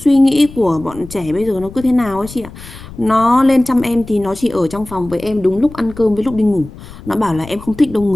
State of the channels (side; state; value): left; noise; rumble, 16 dB below the sound